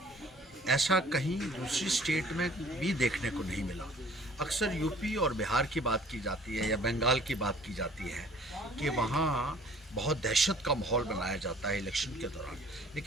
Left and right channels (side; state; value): both; normal; correlation 0.53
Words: ऐसा कहीं दूसरी स्टेट में भी देखने को नहीं मिला। अक्सर यूपी और बिहार की बात की जाती है या बंगाल की बात की जाती है कि वहाँ बहुत दहशत का माहौल बनाया जाता है इलेक्शन के दौरान,